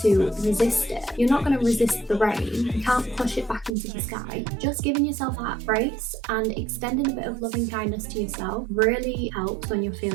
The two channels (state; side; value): drops out; left; at 3.7 s